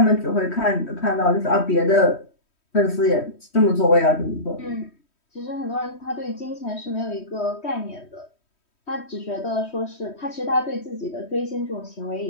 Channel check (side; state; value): right; late; 3.1 ms